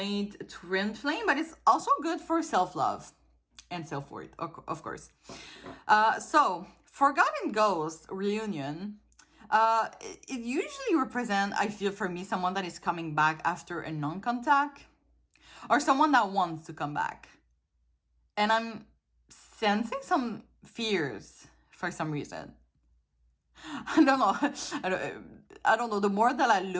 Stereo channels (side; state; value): both; identical; correlation 1.00